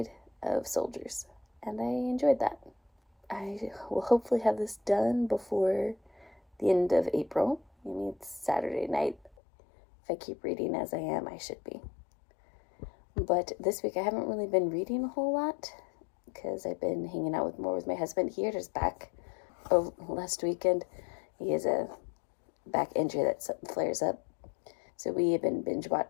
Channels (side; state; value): right; drops out; at 9.3 s